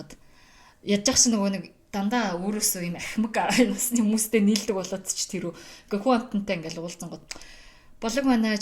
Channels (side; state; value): both; identical; correlation 1.00